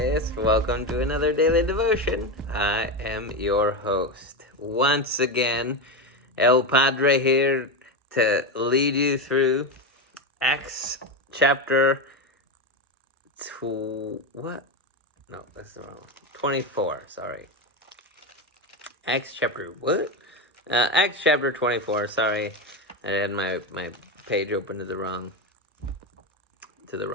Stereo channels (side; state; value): both; normal; correlation 0.14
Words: Welcome to another daily devotion. I am your host. Once again, El Padre here to lead you through Acts chapter what? No, that's wrong. 24, sorry. Acts chapter what? Acts chapter 24, sorry. I had my page open to the wrong